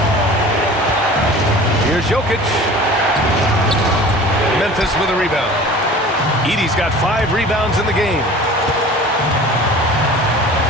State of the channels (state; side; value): normal; both; correlation 0.42